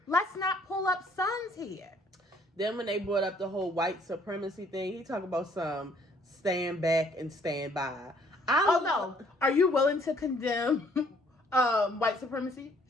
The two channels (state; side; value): normal; both; correlation 0.62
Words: let's not pull up sons here. Then when they brought up the whole white supremacy thing, he talked about some stand back and stand by. No. Are you willing to condemn white supremacy?